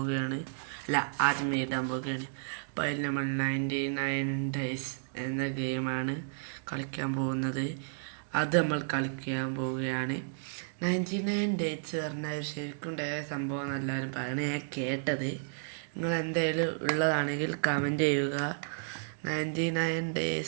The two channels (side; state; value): left; silent; digital silence